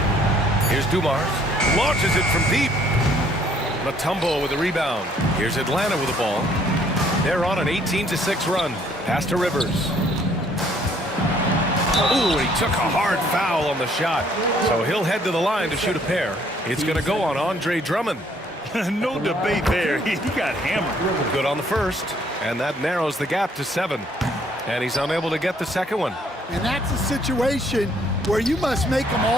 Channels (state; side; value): normal; both; correlation 0.63